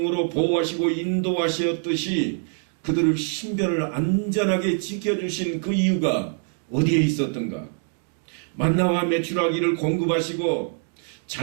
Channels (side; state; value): left; silent; 57 dB below the other